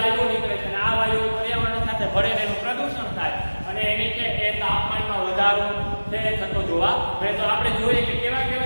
નીકળે છે અને આ વાયુઓ પર્યાવરણ સાથે ભળે એનું પ્રદૂષણ થાય અને એની છે એ તાપમાનમાં વધારો છે થતો જોવા મળે. તો આપણે જોઈએ કે કેવા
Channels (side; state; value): both; inverted; correlation -1.00